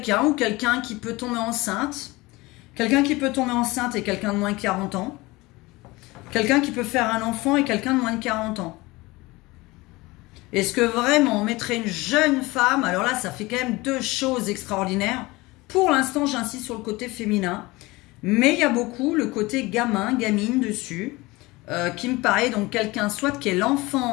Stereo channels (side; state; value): right; quieter; 21.8 dB